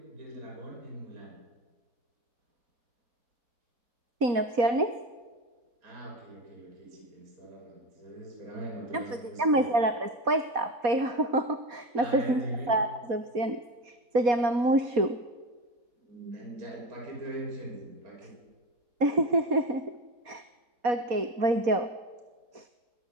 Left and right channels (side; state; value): left; late; 4.2 ms